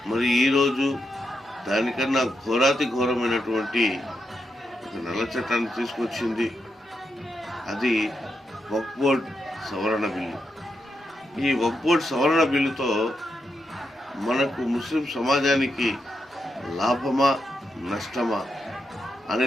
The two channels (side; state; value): both; normal; correlation 0.85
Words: మరి ఈరోజు దానికన్నా ఘోరాతి ఘోరమైనటువంటి ఒక నల్ల చట్టాన్ని తీసుకొచ్చింది. అది వక్ఫ్ బోర్డ్ సవరణ బిల్లు. ఈ వక్ఫ్ బోర్డ్ సవరణ బిల్లుతో మనకు ముస్లిం సమాజానికి లాభమా నష్టమా అనే